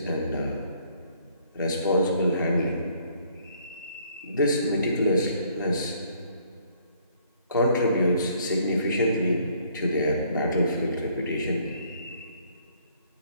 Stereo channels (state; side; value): inverted; both; correlation -0.63